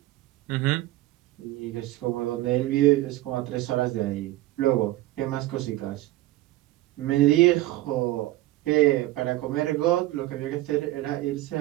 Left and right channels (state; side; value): quieter; left; 16.7 dB